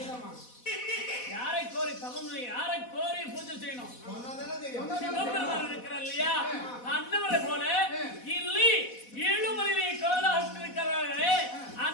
யாரை கோரி தவம், யாரை கோரி பூஜை செய்யணும்? சிவபெருமான் இருக்கிறார் இல்லையா? அன்னவரை போல இல்லை ஏழுமலையை கோலாசிருக்கிறார்களே,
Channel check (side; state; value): right; late; 4.1 ms